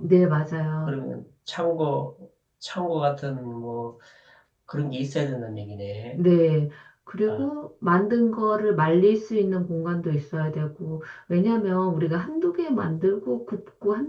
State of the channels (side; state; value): both; identical; correlation 1.00